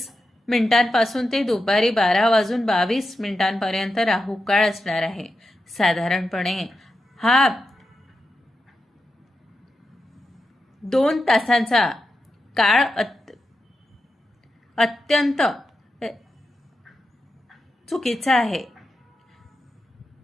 पासून ते दुपारी 12:22 राहू काळ असणार आहे. साधारणपणे हा 2 तासांचा काळ अत्यंत चुकीचा आहे.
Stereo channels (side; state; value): both; normal; correlation 0.88